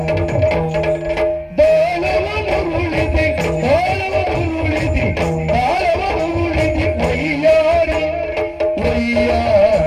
ಬಾಳವನುರುಳಿದಿ, ಬಾಳವನುರುಳಿದಿ, ಬಾಳವನುರುಳಿದಿ, ವೈಯಾರಿ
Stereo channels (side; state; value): both; identical; correlation 1.00